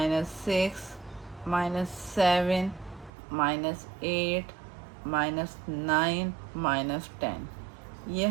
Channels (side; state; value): left; drops out; at 3.1 s